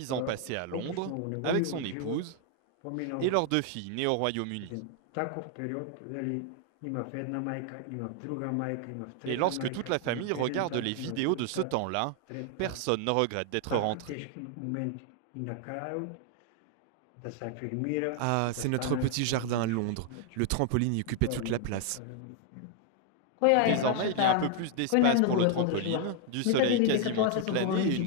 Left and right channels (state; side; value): different; both; correlation 0.00